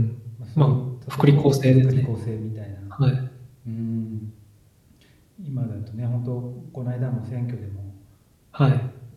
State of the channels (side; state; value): both; identical; correlation 1.00